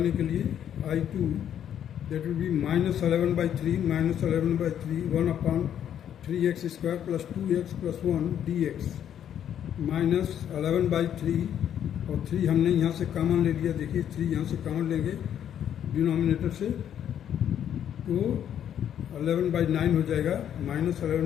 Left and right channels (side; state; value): right; quieter; 9.8 dB